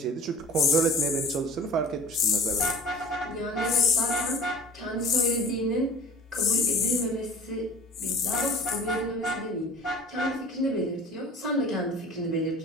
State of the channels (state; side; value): normal; both; correlation 0.43